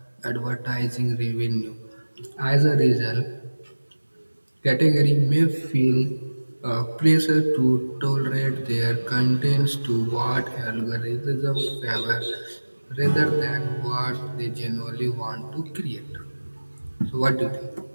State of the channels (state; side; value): inverted; both; correlation -1.00